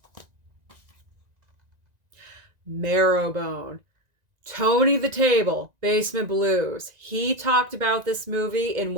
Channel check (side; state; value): left; late; 1.9 ms